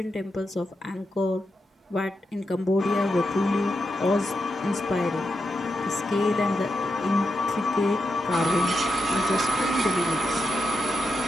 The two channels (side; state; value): both; normal; correlation 0.87